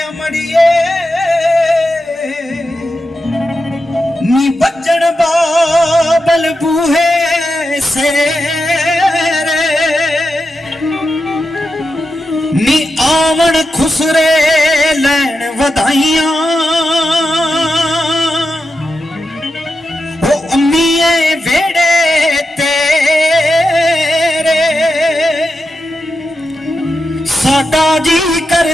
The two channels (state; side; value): normal; both; correlation 0.88